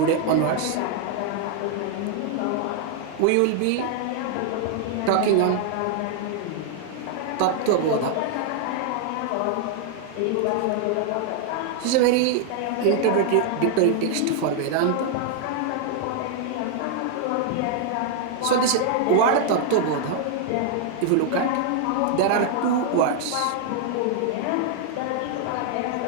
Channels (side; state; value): both; different; correlation 0.00